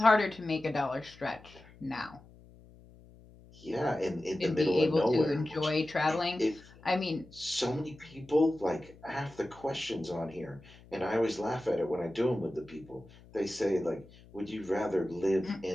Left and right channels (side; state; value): left; noise; hum, 23 dB below the sound